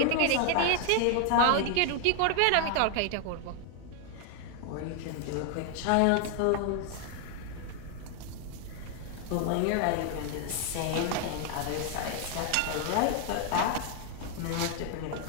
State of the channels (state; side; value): different; both; correlation 0.00